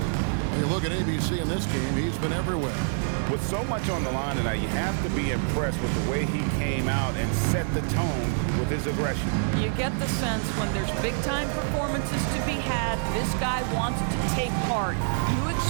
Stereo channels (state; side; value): silent; left; digital silence